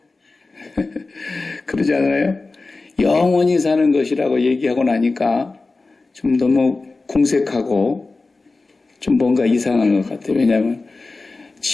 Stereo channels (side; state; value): right; quieter; 3.6 dB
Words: 그러지 않아요? 영원히 사는 것이라고 얘기하고 나니까 좀 너무 궁색하고 좀 뭔가 이상한 것 같아요. 왜냐하면